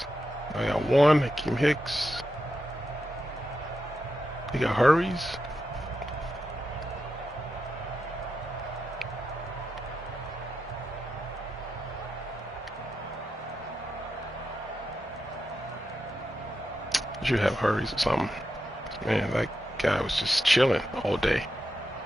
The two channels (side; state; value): both; normal; correlation 0.88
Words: I got one. Akeem Hicks. He got hurries. You have hurries or something. Man, that guy was just chilling all day.